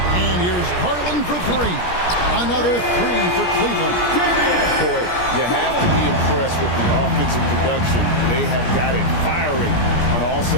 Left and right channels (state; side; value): late; right; 17 ms